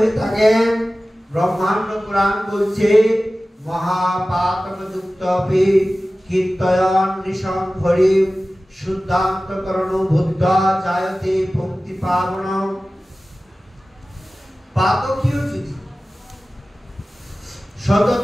থাকেন। ব্রহ্মাণ্ড পুরাণ বলছে, মহাপাতকযুক্তপি কীর্তয়ন নিশং হরি শুদ্ধান্তকরণ বুদ্ধা জায়তে পঙ্ক্তি পাবন। পাতকীও যদি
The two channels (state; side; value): normal; both; correlation 0.96